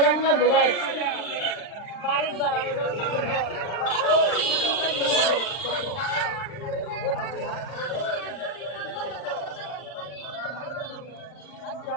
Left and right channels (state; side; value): late; right; 40 ms